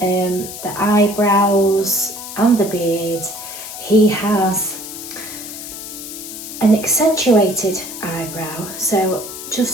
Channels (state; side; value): noise; left; hiss, 10 dB below the sound